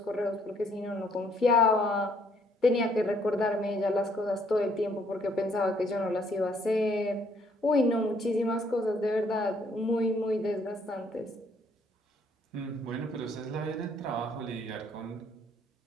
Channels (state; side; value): normal; both; correlation 0.66